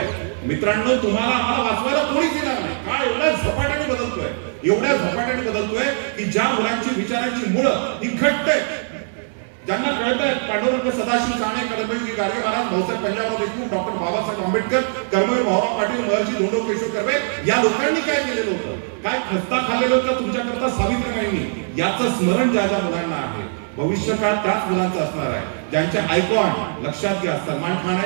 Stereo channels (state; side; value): silent; left; digital silence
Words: मित्रांनो, तुम्हाला आम्हाला वाचवायला कोणीच येणार नाही. काळ एवढ्या झपाट्याने बदलतोय की ज्या मुलांची विचारांची मुळं ही घट्ट आहेत, ज्यांना कळत आहे पांडुरंग सदाशिव साने, कर्मवीर गाडगे महाराज, भाऊसाहेब पंजाबराव देशमुख, डॉक्टर बाबासाहेब आंबेडकर, कर्मवीर भाऊराव पाटील, महर्षी धोंडो केशव कर्वे या लोकांनी काय केलेलं होतं, काय खस्ता खाल्लेलं होतं तुमच्याकरता सावित्रीबाईंनी, याचं स्मरण ज्या ज्या मुलांना आहे भविष्यकाळ त्याच मुलांचं असणार आहे. ज्यांच्या आयकॉन लक्षात घ्या सलमान खान